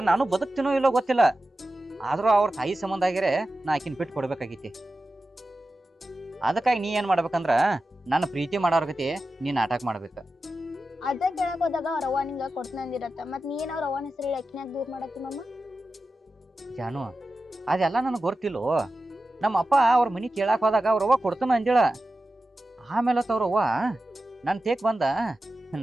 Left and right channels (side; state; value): both; normal; correlation 0.93